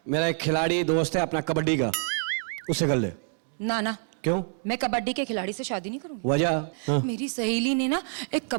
मेरा एक खिलाड़ी दोस्त है अपना कबड्डी का, उससे कर ले। ना ना, क्यों? मैं कबड्डी के खिलाड़ी से शादी नहीं करूंगी। वजह? हाँ। मेरी सहेली ने ना एक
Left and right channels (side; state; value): left; silent; 56 dB below the other